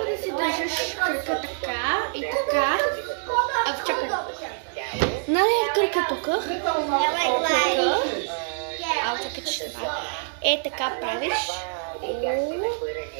да си държиш кръка така и така. Чакай. Нали кръка тук? Чакай, че ще бъде. Е така правиш.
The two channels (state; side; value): silent; left; digital silence